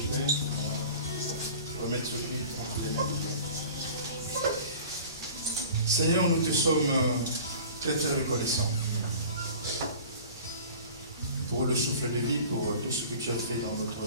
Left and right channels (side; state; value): both; inverted; correlation -0.42